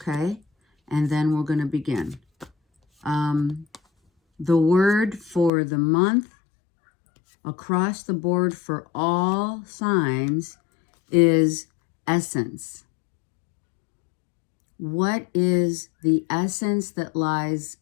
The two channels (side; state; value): right; drops out; at 5.5 s